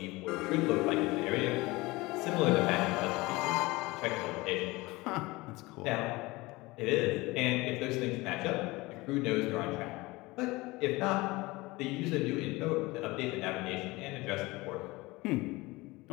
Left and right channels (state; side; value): quieter; right; 21.8 dB